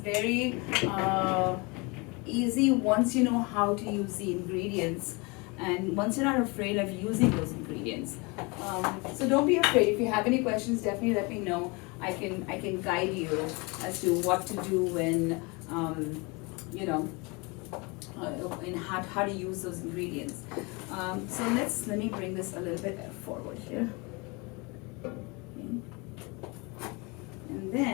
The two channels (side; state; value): right; quieter; 28.0 dB